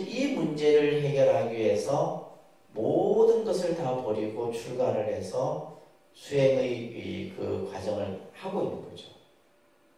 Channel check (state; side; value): identical; both; correlation 1.00